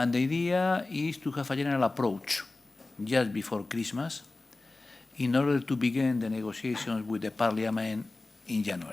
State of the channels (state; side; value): quieter; right; 3.2 dB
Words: the idea is to have a general approach just before Christmas in order to begin the negotiations with the Parliament in